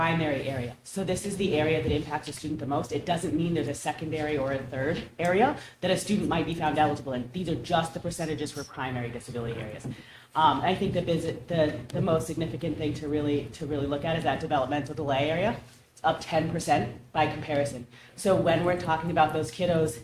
area. So this is the area that impacts a student the most. It doesn't mean there's a secondary or a third area that a student might be found eligible in. These are just the percentages for primary disability areas. I think the most significant thing to really look at is that developmental delay area. It's up 10% by comparison. So when we're talking about those kiddos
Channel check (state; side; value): identical; both; correlation 1.00